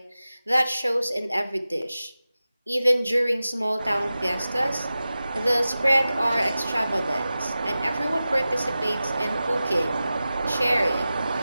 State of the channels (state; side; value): inverted; both; correlation -0.95